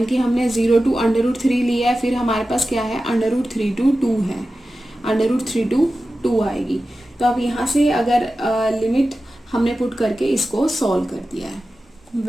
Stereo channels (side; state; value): both; normal; correlation 0.94